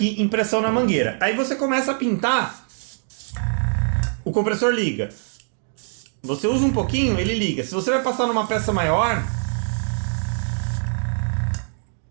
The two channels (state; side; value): silent; left; 63 dB below the other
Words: em pressão na mangueira. Aí você começa a pintar, o compressor liga. Você usa um pouquinho, ele liga. Se você vai passar numa peça maior,